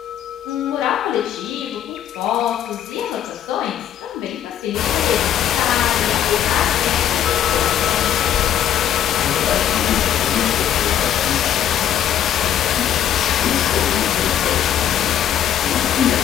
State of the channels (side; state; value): right; quieter; 10.3 dB